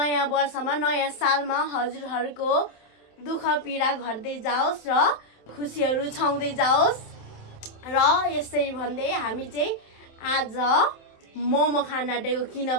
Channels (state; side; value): late; right; 27 ms